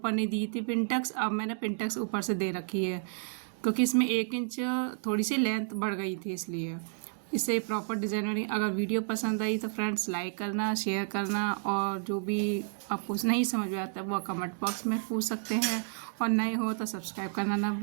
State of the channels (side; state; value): left; silent; digital silence